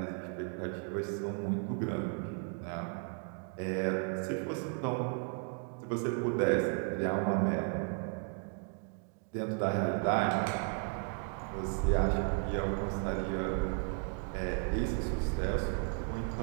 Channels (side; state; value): left; quieter; 40.0 dB